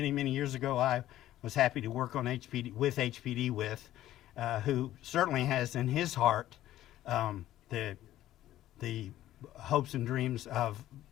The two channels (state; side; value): quieter; right; 13.7 dB